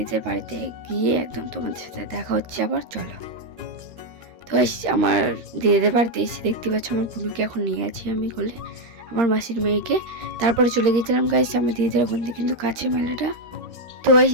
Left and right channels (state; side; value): late; left; 13 ms